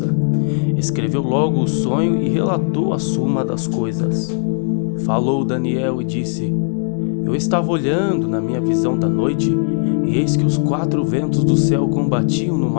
Escreveu logo o sonho e relatou a suma das coisas. Falou Daniel e disse: Eu estava olhando na minha visão da noite, e eis que os 4 ventos do céu combatiam no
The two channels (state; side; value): silent; right; 60 dB below the other